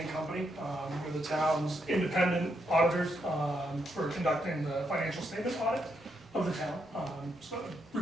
Company. We're the town's independent auditors for conducting the financial statement audit of the town. So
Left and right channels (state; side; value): normal; both; correlation 0.79